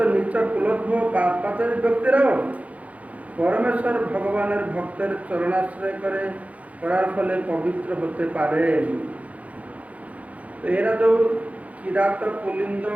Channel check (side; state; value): left; late; 0.067 ms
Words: নিচ কুলদ্ভ পাপাচারী ব্যক্তিরাও পরমেশ্বর ভগবানের ভক্তের চরণাশ্রয় করার ফলে পবিত্র হতে পারেন। তো এরা তো কিরাত পুলিন্দ